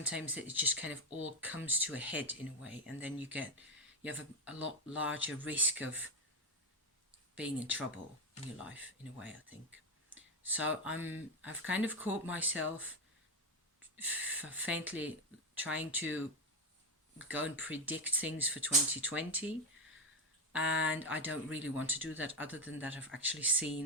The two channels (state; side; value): normal; both; correlation 0.10